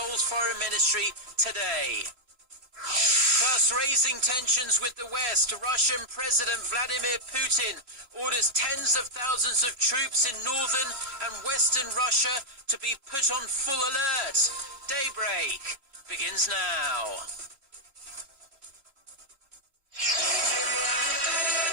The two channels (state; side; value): late; left; 3.0 ms